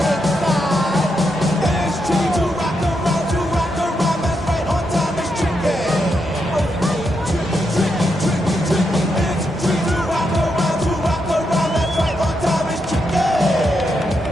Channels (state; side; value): normal; both; correlation 0.82